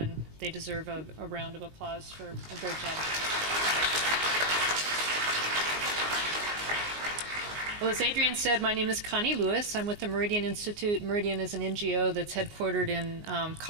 they deserve a round of applause for a great job. Well, as Adrian said, my name is Connie Lewis. I'm with the Meridian Institute. Meridian is an NGO that's headquartered in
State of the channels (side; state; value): left; late; 19 ms